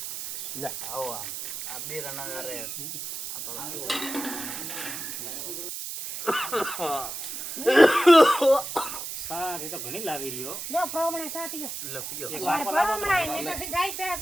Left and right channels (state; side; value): noise; right; hiss, 7 dB below the sound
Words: લે આવો આ બે રના રે સારી તો ઘણી લાવી રહ્યો લો બ્રાહ્મણ સા પીઓ. લે પીઓ માર બ્રાહ્મણ ને તો જાય પેલા